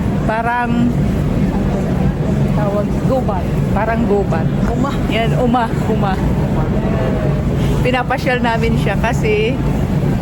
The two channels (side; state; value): both; identical; correlation 1.00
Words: Parang tawag gubat. Parang gubat. Yan, uma. Pinapasyal namin siya kasi